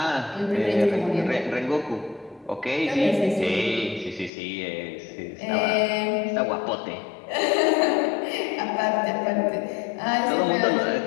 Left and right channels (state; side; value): drops out; right; at 4.3 s